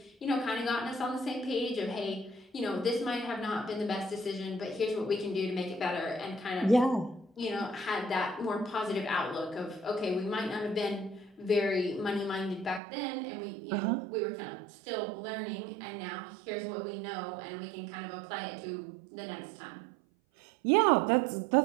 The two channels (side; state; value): left; drops out; at 12.8 s